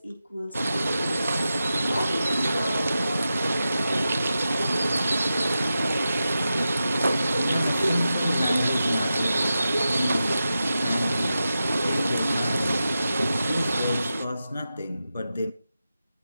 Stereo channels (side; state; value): both; inverted; correlation -0.92